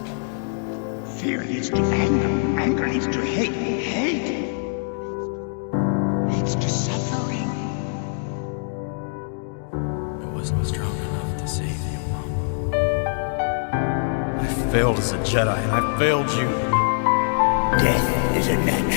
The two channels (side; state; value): right; silent; digital silence